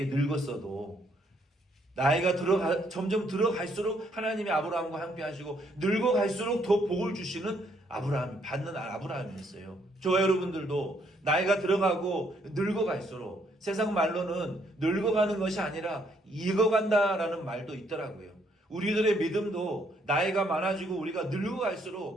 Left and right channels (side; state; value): both; normal; correlation 0.70